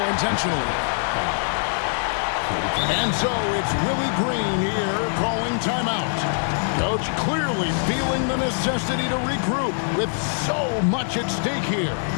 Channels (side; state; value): right; silent; digital silence